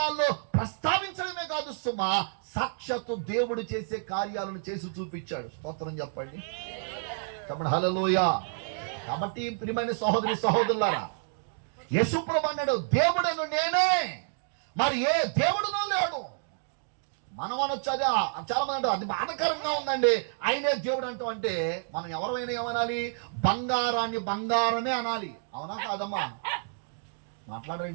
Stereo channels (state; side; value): silent; left; digital silence